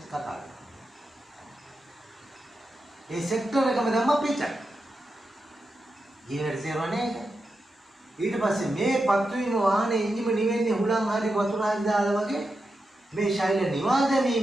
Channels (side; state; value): both; normal; correlation 0.88